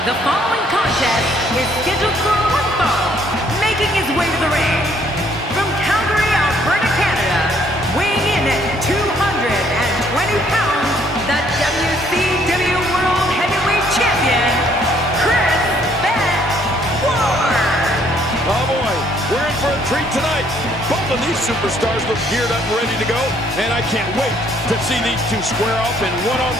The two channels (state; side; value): normal; both; correlation 0.65